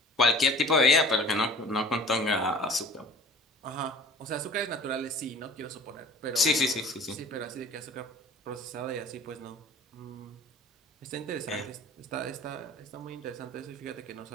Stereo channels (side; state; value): both; normal; correlation 0.45